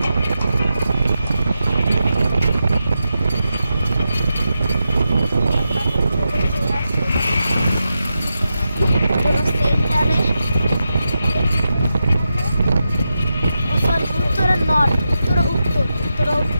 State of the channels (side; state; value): both; inverted; correlation -0.89